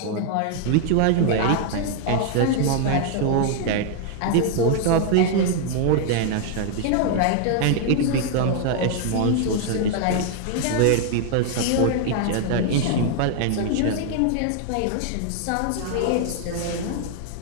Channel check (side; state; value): both; different; correlation 0.00